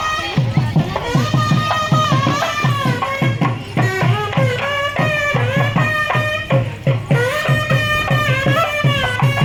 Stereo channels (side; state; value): both; identical; correlation 1.00